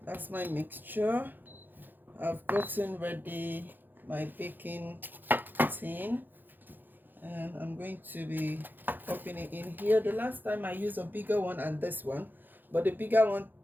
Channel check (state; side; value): late; left; 0.090 ms